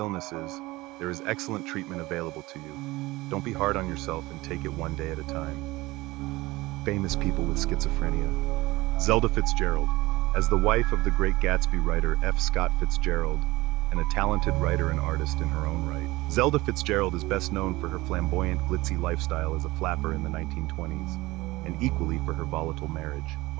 there is excellent treatment available to you. Don't be hard on yourself and take it one day at a time. Famous people with schizophrenia. Zelda Fitzgerald. As the wife of the great Gatsby writer F. Scott Fitzgerald, and a talented writer and artist in her own right, Zelda Fitzgerald is best known for her flamboyant, glitzy lifestyle as a flapper in the 1920s, and equally for her volatile marriage.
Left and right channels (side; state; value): left; quieter; 20.3 dB